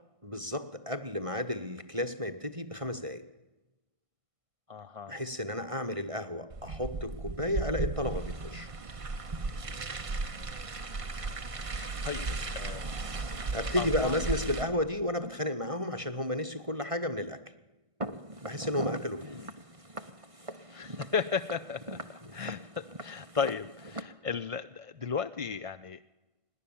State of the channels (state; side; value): late; left; 1.5 ms